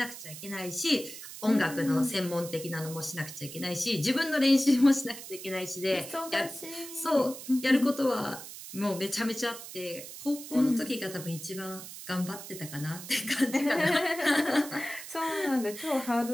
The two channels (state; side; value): noise; right; hiss, 12 dB below the sound